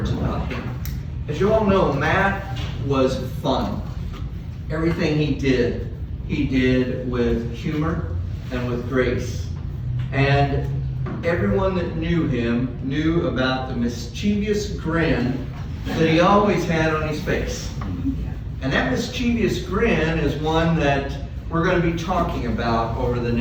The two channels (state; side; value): identical; both; correlation 1.00